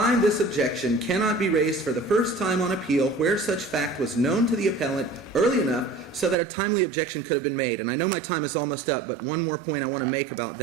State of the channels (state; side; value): drops out; left; at 6.4 s